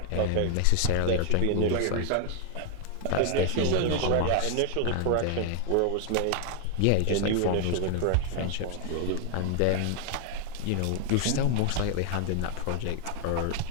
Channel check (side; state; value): both; different; correlation 0.00